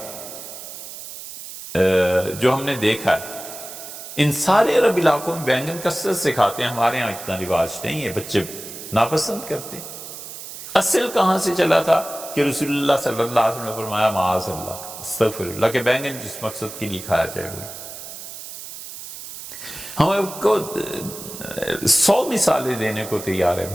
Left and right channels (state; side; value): noise; right; hiss, 12 dB below the sound